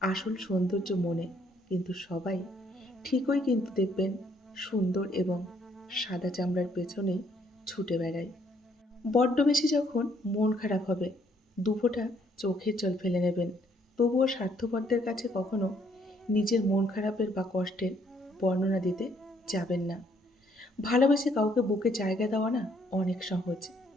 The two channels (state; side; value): normal; both; correlation 0.68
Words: আসল সৌন্দর্য মনে, কিন্তু সবাই ঠিকই কিন্তু দেখবেন সুন্দর এবং সাদা চামড়ার পেছনেই ছুটে বেড়ায়। বড্ড বেশি যখন মন খারাপ হবে, দুফোঁটা চোখের জল ফেলে নেবেন। তবুও স্বার্থপরদের কাছে কখনো নিজের মন খারাপের বা কষ্টের বর্ণনা দিতে যাবেন না। ভালোবেসে কাউকে বুকে জায়গা দেওয়া না অনেক সহজ,